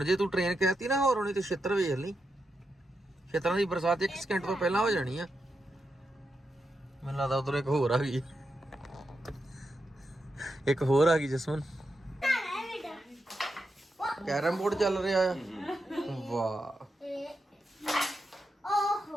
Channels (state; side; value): normal; both; correlation 0.86